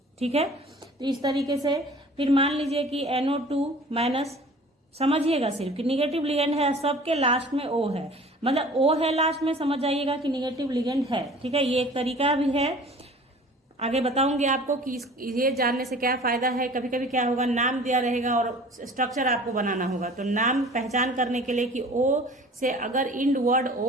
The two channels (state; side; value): normal; both; correlation 0.46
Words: ठीक है। तो इस तरीके से फिर मान लीजिए कि NO2-, समझिएगा सिर्फ कि निगेटिव लिगेंड है, सबके लास्ट में ओ है, मतलब ओ है लास्ट में, समझ जाइएगा कि निगेटिव लिगेंड है, ठीक है। ये एक तरीका भी है, आगे बताऊंगी आपको कि ये जानने से क्या फायदा है। कभी कभी क्या होगा, नाम दिया रहेगा और स्ट्रक्चर आपको बनाना होगा, तो नाम पहचान करने के लिए कि ओ से अगर इंड वर्ड